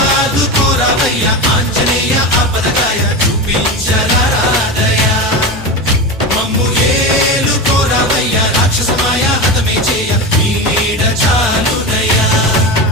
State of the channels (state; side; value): normal; both; correlation 0.22